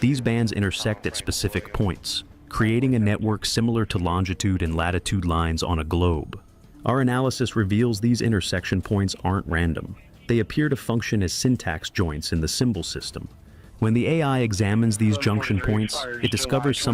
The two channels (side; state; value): both; identical; correlation 1.00